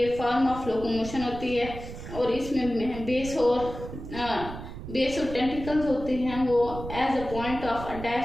फॉर्म ऑफ लोकोमोशन होती है और इसमें बेस और टेंटिकल्स होते हैं वो as a point of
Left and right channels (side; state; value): right; noise; rumble, 10 dB below the sound